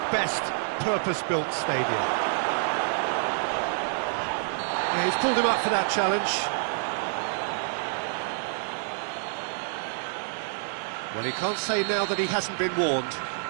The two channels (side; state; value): left; silent; digital silence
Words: best purpose-built stadia. Yeah, he's pulled him up for that challenge. Well, he can't say now that he hasn't been warned.